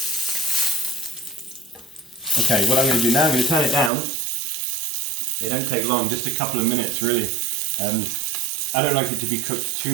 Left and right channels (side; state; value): left; drops out; at 3.9 s